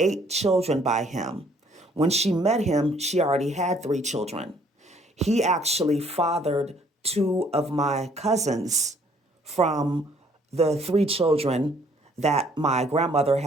children by him. When she met him, she already had 3 children. He actually fathered 2 of my cousins from the 3 children that my grandmother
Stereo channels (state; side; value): normal; both; correlation 0.62